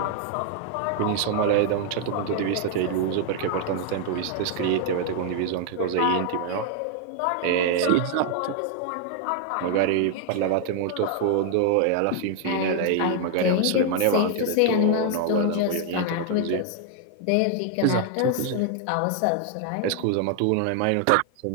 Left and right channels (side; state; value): both; different; correlation 0.00